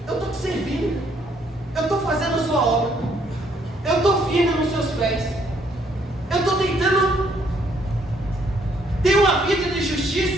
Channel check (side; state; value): both; normal; correlation 0.68